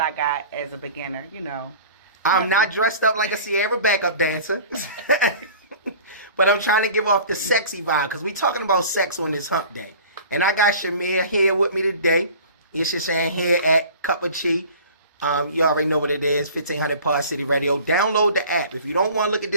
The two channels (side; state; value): both; inverted; correlation -0.43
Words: got as a beginner, I'm not dressed up like a Sierra backup dancer. But I'm trying to give off the sexy vibe because we talking about sex on this hump day. And I got Shamir here with me today. He's just saying here at Cup of Chi. You already know what it is, 1500 Pod City Radio. Download the app. If you don't want to look at